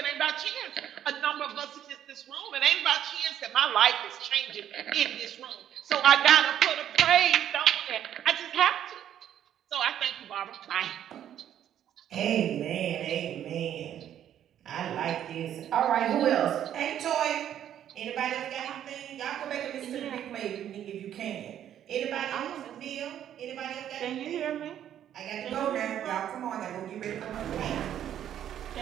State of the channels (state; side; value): quieter; left; 10.5 dB